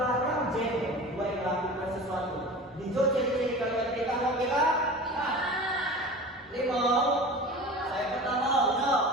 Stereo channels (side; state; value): both; normal; correlation 0.35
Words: jadi buat melakukan sesuatu. Dijawab ciri-ciri kalimat perintah mau kita? Lima. Saya pertama, no.